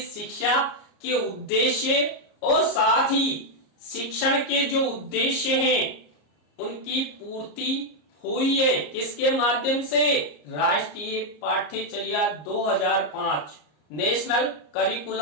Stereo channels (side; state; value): right; late; 34 ms